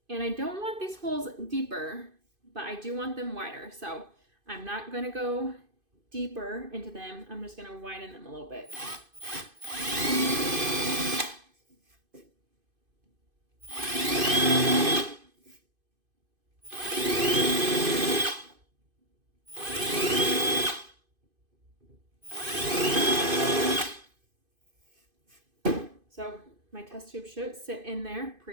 And I don't want these holes deeper, but I do want them wider. So I'm not going to go deeper into them. I'm just going to widen them a little bit. So my test tube should sit in there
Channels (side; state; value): left; late; 2.5 ms